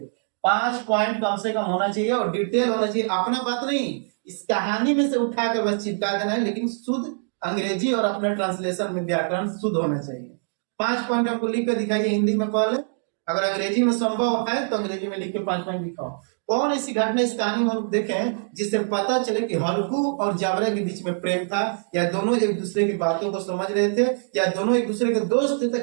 5 पॉइंट कम से कम होना चाहिए और डिटेल होना चाहिए। अपना बात नहीं, इस कहानी में से उठाकर बस चिपका देना है, लेकिन शुद्ध अंग्रेजी और अपने ट्रांसलेशन में व्याकरण शुद्ध होना चाहिए। 5 पॉइंट आपको लिख कर दिखाइए हिंदी में पहले, अगर अंग्रेजी में संभव है तो अंग्रेजी में लिख के 5 पॉइंट दिखाओ। कौन ऐसी घटना इस कहानी में हम देखें जिससे पता चले कि हल्कू और जावरा के बीच में प्रेम था, या दोनों एक दूसरे की बातों को समझ रहे थे, या दोनों एक दूसरे के दोस्त थे,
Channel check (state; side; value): silent; left; digital silence